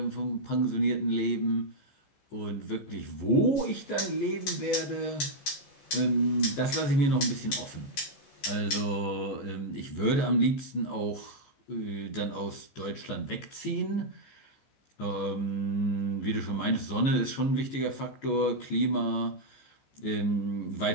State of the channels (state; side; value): late; right; 14 ms